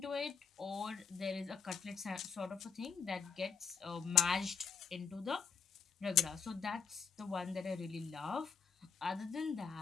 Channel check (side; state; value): right; quieter; 6.4 dB